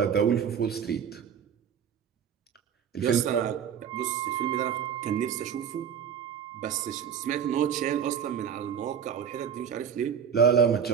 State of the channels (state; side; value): quieter; left; 7.8 dB